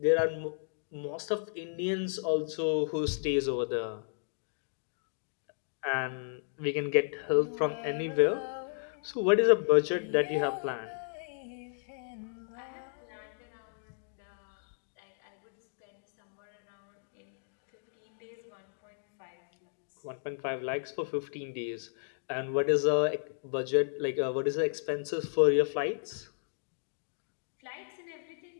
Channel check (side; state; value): right; silent; digital silence